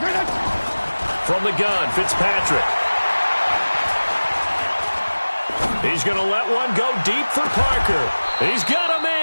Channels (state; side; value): inverted; both; correlation -1.00